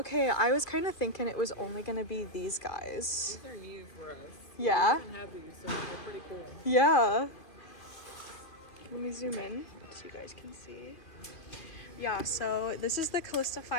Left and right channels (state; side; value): late; right; 2.4 ms